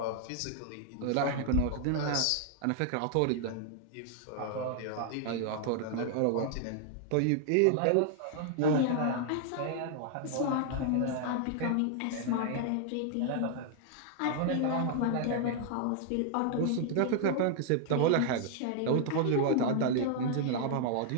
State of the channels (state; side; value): different; both; correlation 0.00